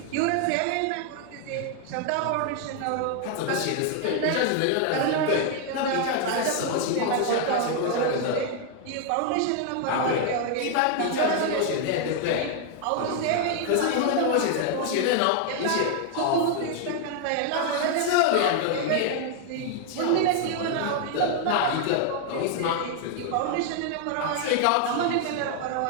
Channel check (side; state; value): both; different; correlation 0.00